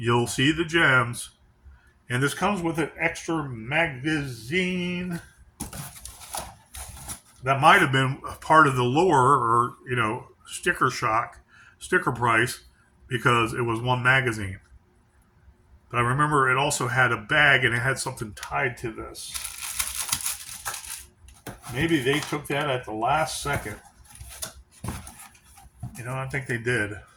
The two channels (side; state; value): both; identical; correlation 1.00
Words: see the gems. And this comes with an extra magazine. That might have been part of the lure or, sticker price, because it was one magazine. But I remember it also had a bag and it had something tied to this. Maybe they took that at the last second. I think they did.